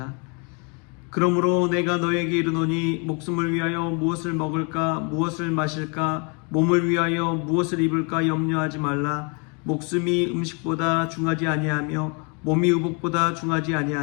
그러므로 내가 너에게 이르노니 목숨을 위하여 무엇을 먹을까 무엇을 마실까 몸을 위하여 무엇을 입을까 염려하지 말라. 목숨이 음식보다 중하지 아니하며 몸이 의복보다 중하지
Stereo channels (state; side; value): quieter; right; 34.3 dB